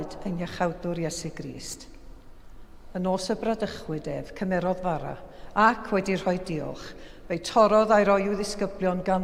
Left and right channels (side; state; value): both; identical; correlation 1.00